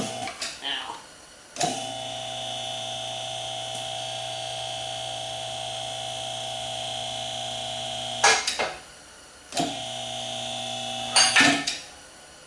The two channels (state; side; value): identical; both; correlation 1.00